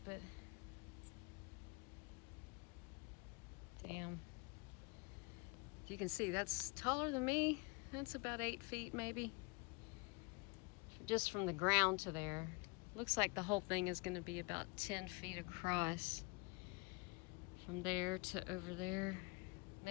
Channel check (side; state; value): right; quieter; 29.5 dB